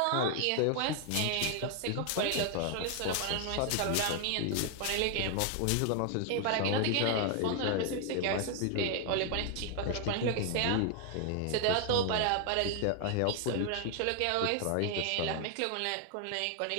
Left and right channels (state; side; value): different; both; correlation 0.00